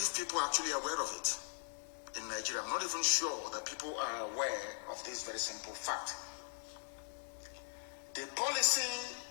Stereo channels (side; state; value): right; silent; 51 dB below the other